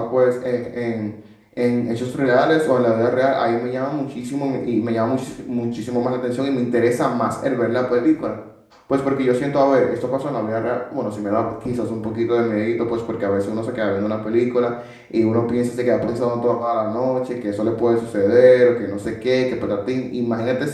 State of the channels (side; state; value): both; identical; correlation 1.00